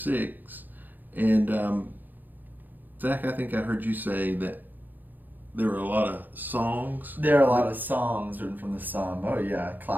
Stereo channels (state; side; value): late; left; 0.086 ms